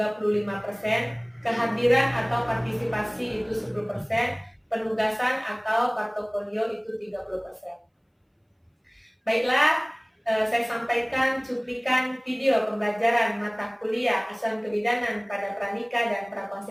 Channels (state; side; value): identical; both; correlation 1.00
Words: kehadiran atau partisipasi itu 10%, penugasan atau portofolio itu 30%. Baiklah, saya sampaikan cuplikan video pembelajaran mata kuliah asuhan kebidanan pada pranikah dan